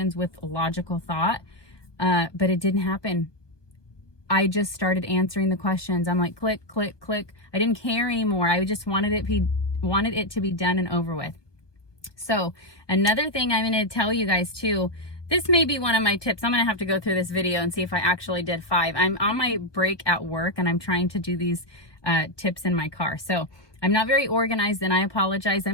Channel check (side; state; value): right; late; 1.2 ms